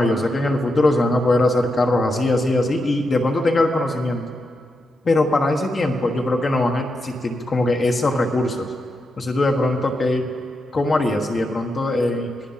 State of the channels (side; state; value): both; normal; correlation 0.85